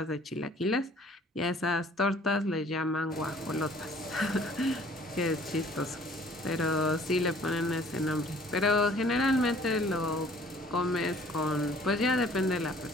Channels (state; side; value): normal; both; correlation 0.54